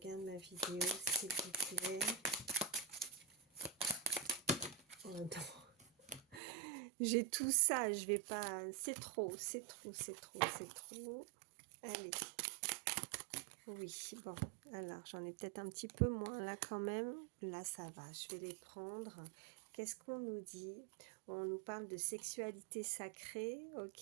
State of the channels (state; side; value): drops out; left; at 6.4 s